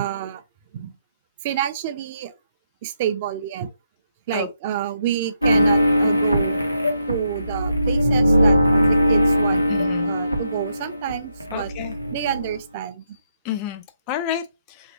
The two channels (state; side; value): inverted; both; correlation -0.79